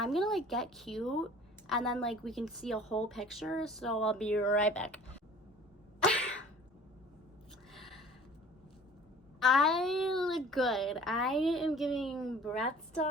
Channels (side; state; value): both; normal; correlation 0.48